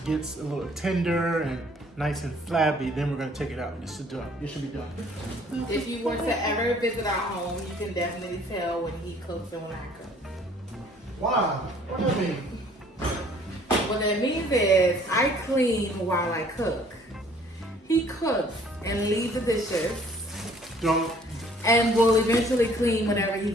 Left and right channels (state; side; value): normal; both; correlation 0.57